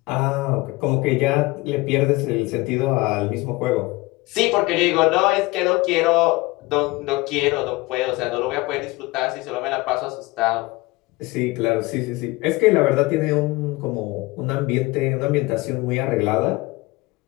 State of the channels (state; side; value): quieter; right; 22.3 dB